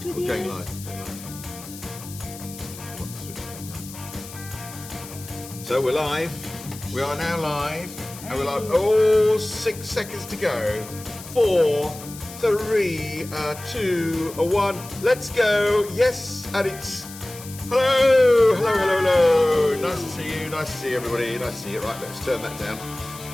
with you. Going live. So we're live. We are now live. And we're live. Oh, 6 seconds to go. 4, 3, 2, 1. Let's go. Yes, and it's hello, hello, hello, hello. Nice to see you. Nice to see everybody. Nice to see you. Right, let's turn that down.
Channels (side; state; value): left; noise; hiss, 15 dB below the sound